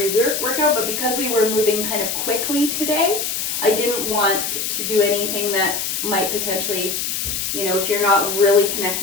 workout, but because we were moving kind of quickly today, I didn't want to do anything that might potentially, you know, if you're not really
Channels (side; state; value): left; noise; hiss, 2 dB below the sound